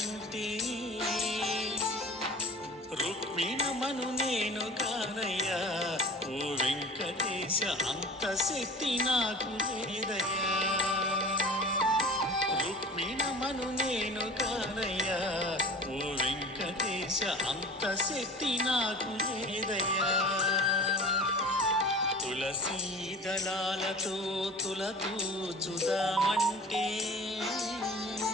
రుక్మిణమను నేను కానయ్యా ఓ వెంకటేశ అంత శక్తి నాకు లేదయ్యా రుక్మిణమను నేను కానయ్యా ఓ వెంకటేశ అంత శక్తి నాకు లేదయ్యా తులసీ దళాలతో తులతూచుదామంటే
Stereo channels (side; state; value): both; normal; correlation 0.38